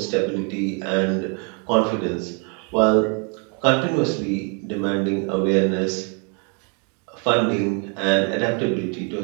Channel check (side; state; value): left; quieter; 36.8 dB